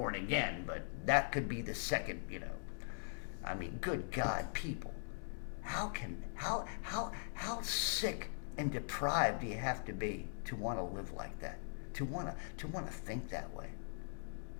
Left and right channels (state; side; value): silent; right; digital silence